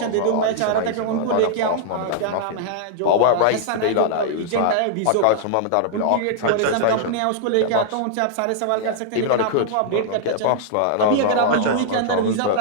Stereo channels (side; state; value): both; different; correlation -0.01